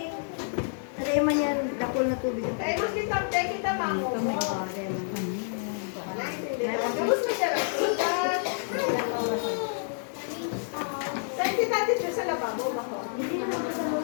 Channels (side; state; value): right; silent; digital silence